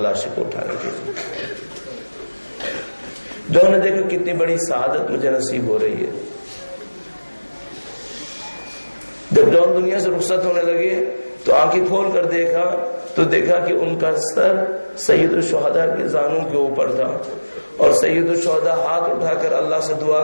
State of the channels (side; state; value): both; inverted; correlation -1.00